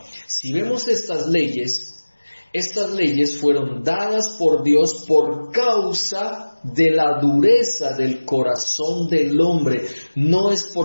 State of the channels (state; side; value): inverted; both; correlation -1.00